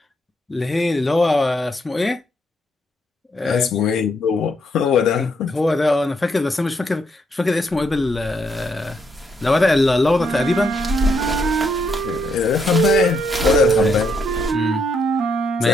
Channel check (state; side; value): normal; both; correlation 0.76